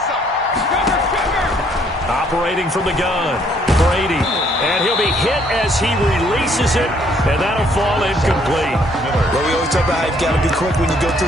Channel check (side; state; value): both; normal; correlation 0.65